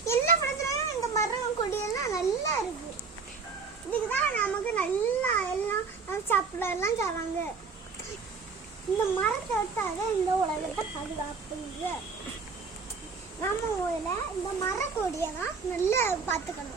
எல்லா படத்துலையும் இந்த மரம் கொடியெல்லாம் நல்லா இருக்கு. இதுக்கு தான் நமக்கு நல்லா எல்லாம் சாப்பிடலாம் தராங்க. இந்த மரத்தை விட்டாத இந்த உலகத்தை பாதுகாப்புங்க. நம்ம ஊரில் இந்த மரக்கொடியை தான் நல்லா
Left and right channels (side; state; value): left; quieter; 5.0 dB